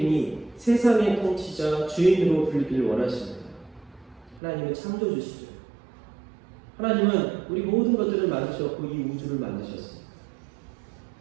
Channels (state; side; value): drops out; left; at 4.4 s